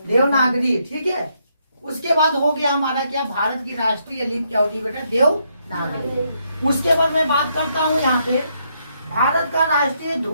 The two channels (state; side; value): inverted; both; correlation -0.76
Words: देवनागरी, ठीक है। उसके बाद हो गया हमारा क्या? भारत की राष्ट्रीय लिपि क्या होती है बेटा? देवनागरी। उसके बाद मैं बात करता हूँ यहाँ पे भारत का राष्ट्रीय